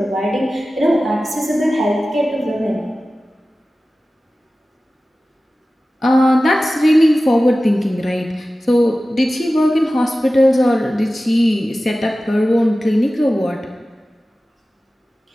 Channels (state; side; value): normal; both; correlation 0.96